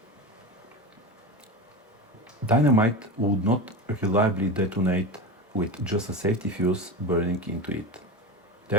Dynamite would not reliably detonate with just a safety fuse burning into it.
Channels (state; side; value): normal; both; correlation 0.24